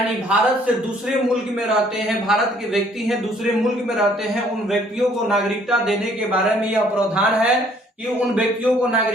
भारत से दूसरे मुल्क में रहते हैं, भारत के व्यक्ति हैं दूसरे मुल्क में रहते हैं, उन व्यक्तियों को नागरिकता देने के बारे में यह प्रावधान है कि उन व्यक्तियों को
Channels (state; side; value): normal; both; correlation 0.61